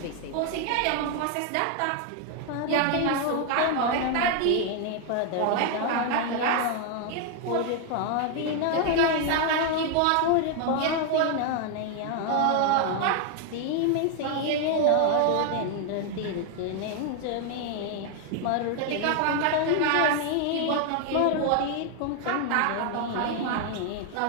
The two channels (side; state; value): both; different; correlation 0.01